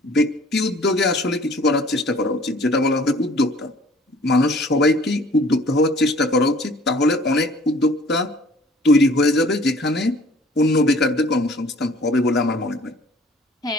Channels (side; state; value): both; normal; correlation 0.53